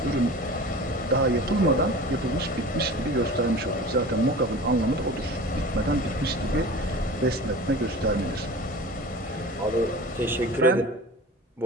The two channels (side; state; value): both; normal; correlation 0.37